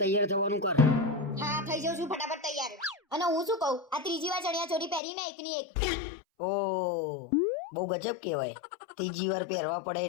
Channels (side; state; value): right; drops out; at 5.0 s